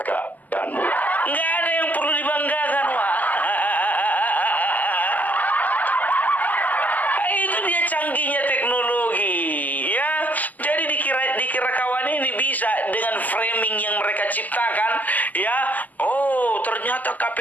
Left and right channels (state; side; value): late; right; 0.081 ms